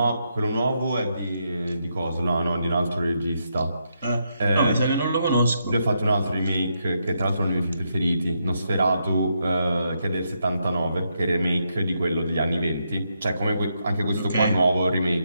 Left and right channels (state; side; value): inverted; both; correlation -0.80